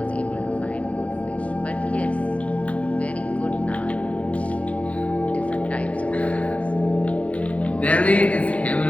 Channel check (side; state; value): right; late; 0.067 ms